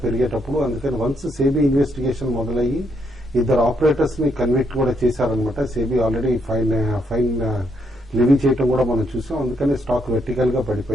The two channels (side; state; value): both; normal; correlation 0.76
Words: పెరిగేటప్పుడు. అందుకని వన్స్ సేబీ ఇన్వెస్టిగేషన్ మొదలయ్యి ఇద్దరు ఆపరేటర్స్ ని కన్విక్ట్ కూడా చేశారనమాట. సేబీ ఆల్రెడీ ఫైన్ లివీ చేయటం కూడా మనం చూసాం. అందుకని స్టాక్ వెర్టికల్ గా